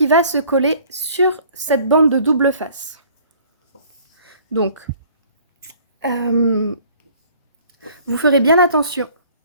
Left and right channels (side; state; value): both; inverted; correlation -0.54